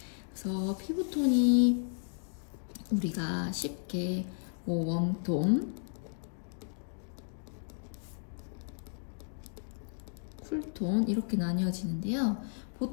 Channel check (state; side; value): silent; right; digital silence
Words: 그래서 피부톤이 우리가 쉽게 웜톤, 쿨톤 이렇게 나뉘어지는데요.